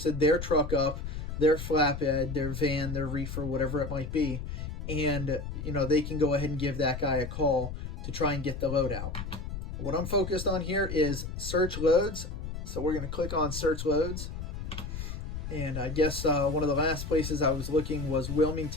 their truck up, their flatbed, their van, their reefer, whatever it might be. And, they can go ahead and give that guy a call to try and get the load out. What I'm focused on here is search loads. So we're going to click on search loads. And I guess one of the last places I was looking was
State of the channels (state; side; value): noise; left; rumble, 6 dB below the sound